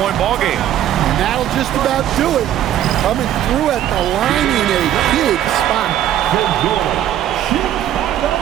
ball game. And that'll just about do it. Coming through at the line in a big spot.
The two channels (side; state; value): left; quieter; 11.5 dB